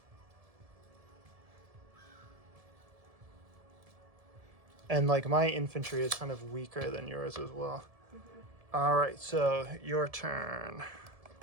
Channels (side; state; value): left; late; 1.7 ms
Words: And like my infantry is kind of weaker than yours as well. All right, so your turn.